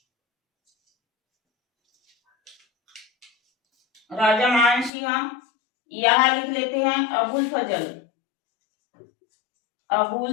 राजा मान सिंह। यहां लिख लेते हैं अबुल फजल।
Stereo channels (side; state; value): right; drops out; at 4.9 s